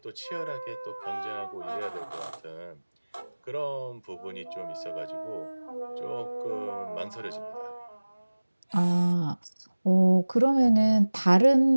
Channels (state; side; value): inverted; both; correlation -1.00